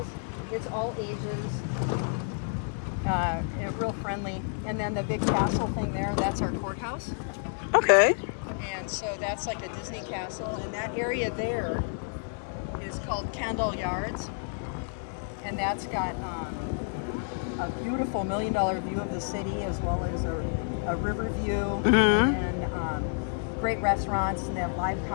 It's all ages. Real friendly. And then the big castle thing there, that's our courthouse. Okay. And so that's like a Disney castle. And that area there is called Kendall Yards. and that's got a beautiful $1 million view of the city, as well as a river view, and great restaurants, and they have live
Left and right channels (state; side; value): silent; right; digital silence